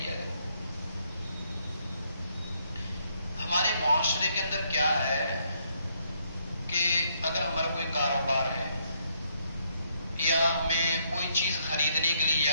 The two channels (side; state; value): both; inverted; correlation -0.73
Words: جائے. ہمارے معاشرے کے اندر کیا ہے کہ اگر ہمارا کوئی کاروبار ہے یا ہمیں کوئی چیز خریدنے کے لیے